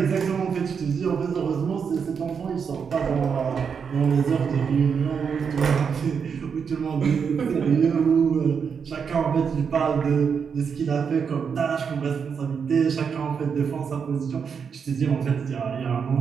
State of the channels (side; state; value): left; quieter; 6.4 dB